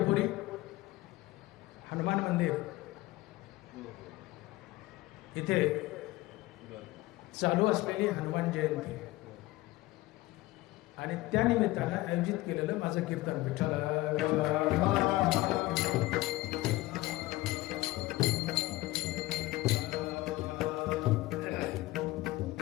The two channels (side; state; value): right; quieter; 18.9 dB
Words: हनुमान मंदिर इथे चालू असलेली हनुमान जयंती आणि त्या निमित्तानं आयोजित केलेलं माझं कीर्तन विठ्ठल.